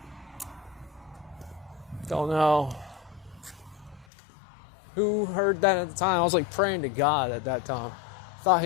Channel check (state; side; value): drops out; right; at 4.0 s